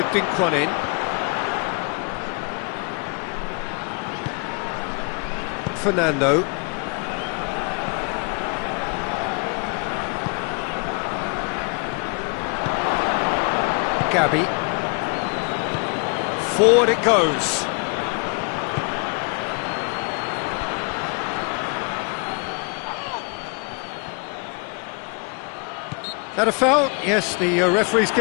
dink one in. Fernando. Gabby. Forward it goes. That a foul? Yes, the referee's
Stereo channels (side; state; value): right; quieter; 35.0 dB